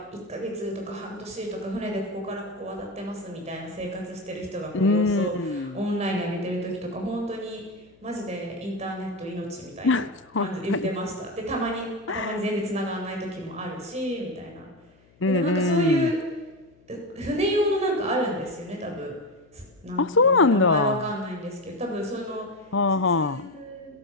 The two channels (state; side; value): noise; left; hum, 30 dB below the sound